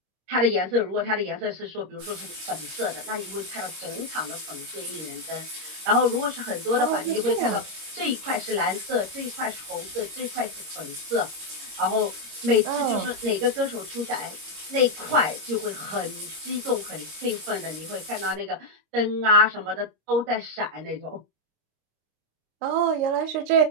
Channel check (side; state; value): left; late; 26 ms